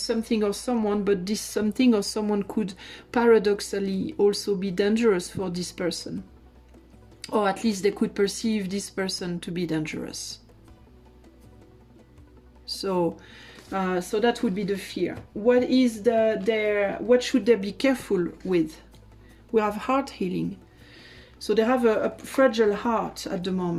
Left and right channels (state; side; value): identical; both; correlation 1.00